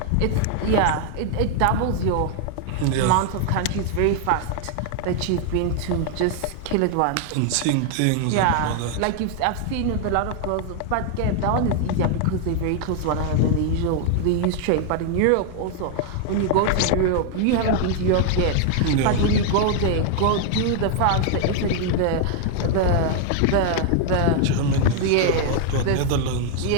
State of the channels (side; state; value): both; different; correlation 0.00